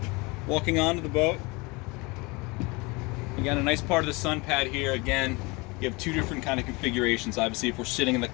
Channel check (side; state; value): right; quieter; 26.1 dB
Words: Walking onto the boat. Again, a nice part of the sun pad here. Again, you have two different kind of configurations. Obviously, if we're sitting in the